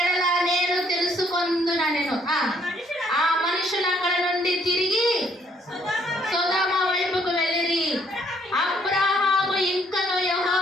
ఎడల నేను తెలుసుకొందునా నేను. ఆ మనుషులు అక్కడ నుండి తిరిగి సొదొమ వైపుకు వెళ్ళిరి. అబ్రహాము ఇంకను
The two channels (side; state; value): both; normal; correlation 0.67